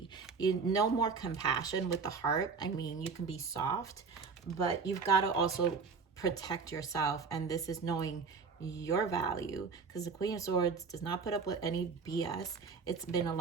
No more compassion with the heart. I mean, you can be soft, but you've got to also protect yourself, and this is knowing your value, because the Queen of Swords does not put up with any BS. It's been a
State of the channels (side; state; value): left; quieter; 5.1 dB